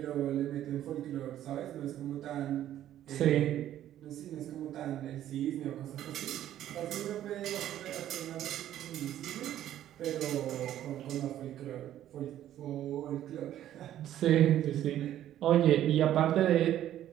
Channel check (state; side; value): quieter; left; 12.0 dB